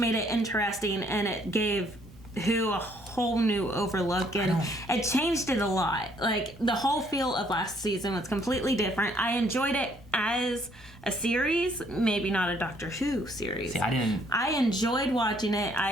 it interesting, and it gave Who a whole new overlook, and it changed it a lot. Like, the whole feel of last season was completely different. I enjoyed it as a series, maybe not a Doctor Who series. See, I enjoyed watching it.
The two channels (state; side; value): normal; both; correlation 0.66